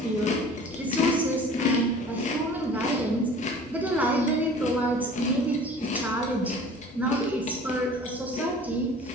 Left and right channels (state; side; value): normal; both; correlation 0.45